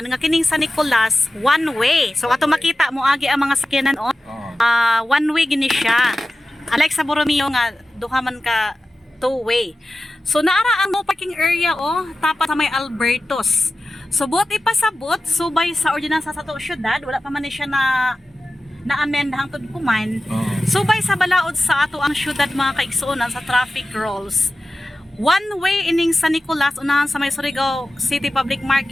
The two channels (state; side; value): normal; both; correlation 0.94